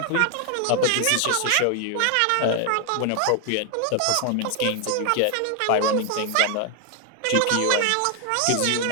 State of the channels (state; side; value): different; both; correlation 0.00